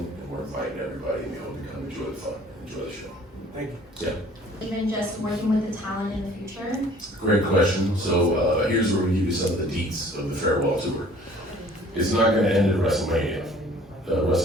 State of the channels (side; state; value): both; normal; correlation 0.53